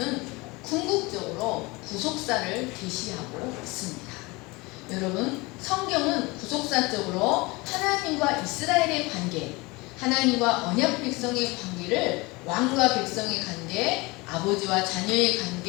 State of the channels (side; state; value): right; quieter; 24.1 dB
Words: 궁극적으로 구속사를 계시하고 있습니다. 여러분, 성경은 구속사적으로 하나님과 이스라엘의 관계, 하나님과 언약 백성의 관계를 왕과 백성의 관계, 아버지와 자녀의